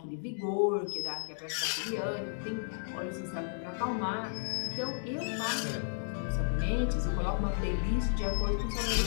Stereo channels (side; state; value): right; silent; digital silence